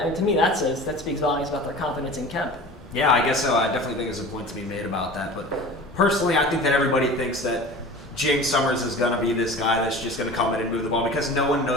to me, that speaks volumes about their confidence in Kemp. Yeah, I guess so. I definitely think there's a point to be made about that. But personally, I think that everybody thinks that James Summers is going to be this guy that's just going to come in and move the ball because no one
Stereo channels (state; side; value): normal; both; correlation 0.38